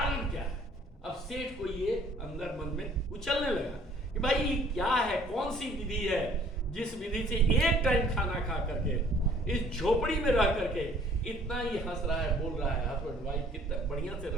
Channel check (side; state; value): both; normal; correlation 0.57